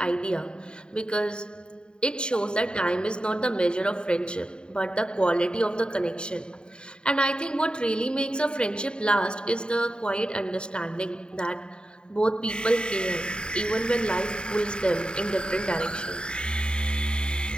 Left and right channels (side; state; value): right; late; 0.050 ms